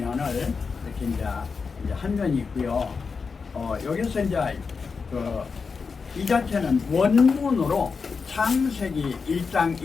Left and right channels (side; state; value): right; quieter; 5.1 dB